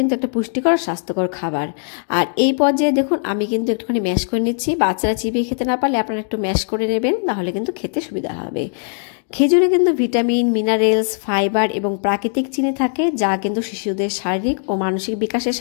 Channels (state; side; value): silent; right; 63 dB below the other